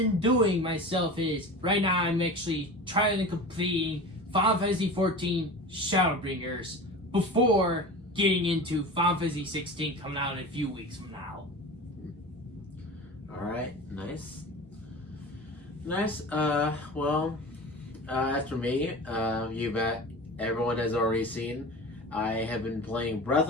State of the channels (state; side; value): normal; both; correlation 0.33